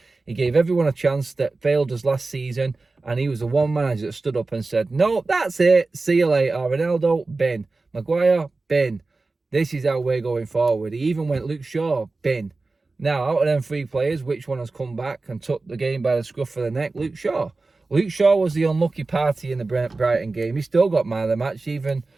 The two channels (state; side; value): quieter; left; 3.6 dB